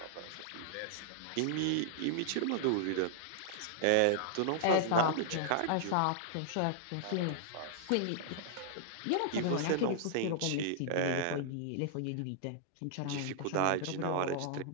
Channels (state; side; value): different; both; correlation -0.01